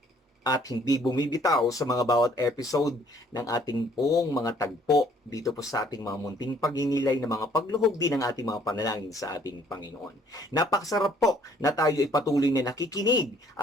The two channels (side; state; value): both; normal; correlation 0.61